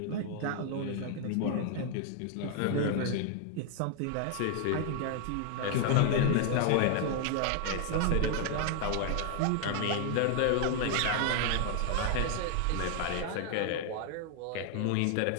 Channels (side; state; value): both; different; correlation 0.00